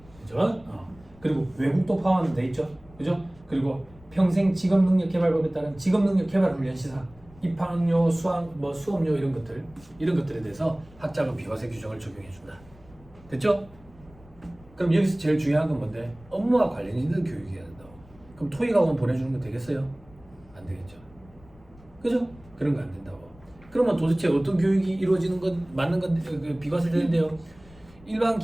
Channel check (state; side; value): noise; left; rumble, 24 dB below the sound